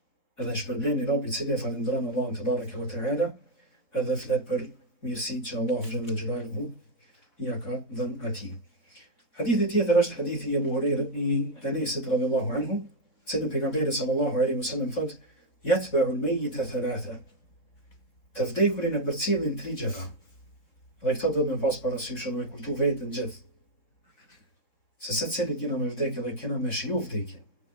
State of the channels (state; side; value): late; right; 4.1 ms